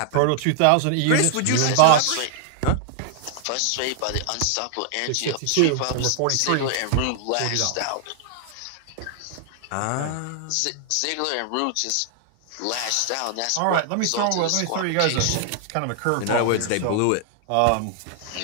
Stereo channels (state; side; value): different; both; correlation 0.00